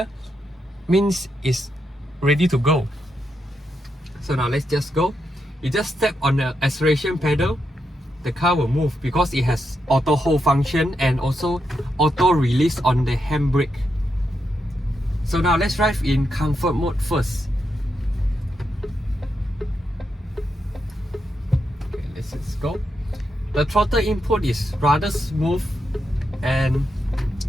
means it's ready to go. So now let's just go. You just step on the acceleration pedal, the car will move because it has auto hold function and also auto release on the handbrake. So now let's drive in comfort mode first. Okay, let's just go. The throttle input is rather smooth, and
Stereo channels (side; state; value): both; normal; correlation 0.84